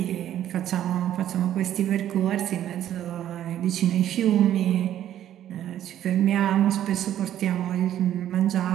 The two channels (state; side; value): quieter; left; 11.5 dB